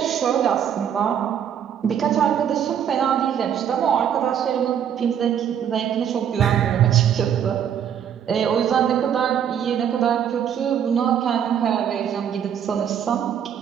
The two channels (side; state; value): left; quieter; 8.9 dB